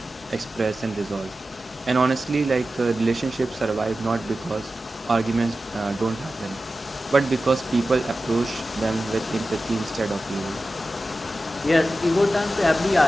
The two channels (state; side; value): normal; both; correlation 0.94